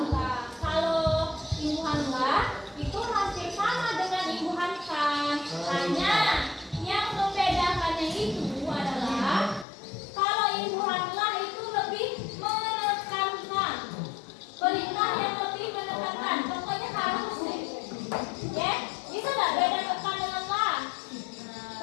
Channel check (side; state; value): right; drops out; at 9.7 s